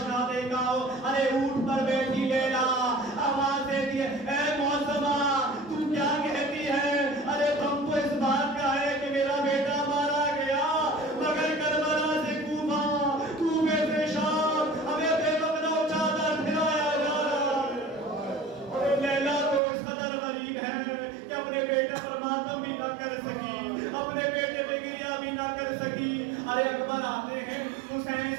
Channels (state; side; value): drops out; left; at 19.6 s